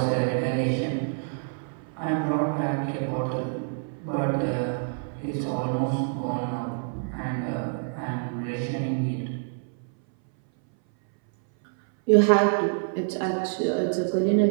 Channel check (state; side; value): silent; left; 60 dB below the other